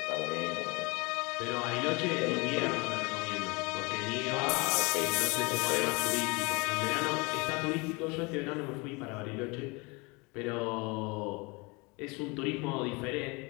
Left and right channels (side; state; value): right; quieter; 27.6 dB